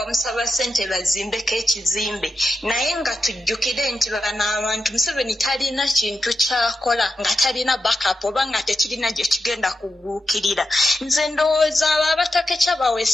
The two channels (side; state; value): both; normal; correlation 0.88